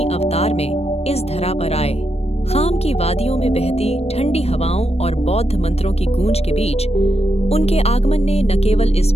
अवतार में इस धरा पर आए। खाम की वादियों में बहती ठंडी हवाओं और बौद्ध मंत्रों की गूंज के बीच उनके आगमन ने न केवल इस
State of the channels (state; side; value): late; right; 0.30 ms